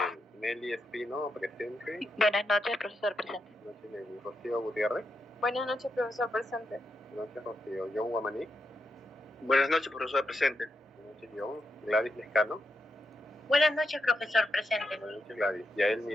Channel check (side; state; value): both; normal; correlation 0.84